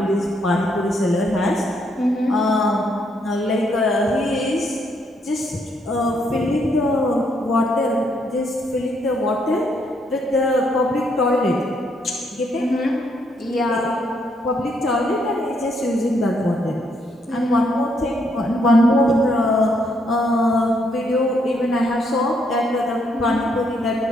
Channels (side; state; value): both; normal; correlation 0.73